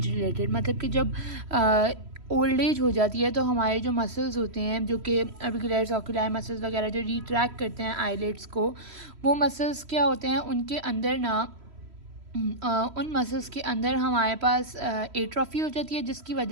रिलेटेड, मतलब कि जब ओल्ड एज हो जाती है तो हमारे जो मसल्स होते हैं जो कि ऑर्बिकुलर ऑक्यूलाई मसल्स वगैरह जो रिट्रैक्ट करते हैं आईलिड्स को, वो मसल्स क्या होते हैं उनके अंदर ना उन मसल्स के अंदर हमारे पास एट्रोफी हो जाती है, जिसकी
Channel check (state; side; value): late; left; 3.1 ms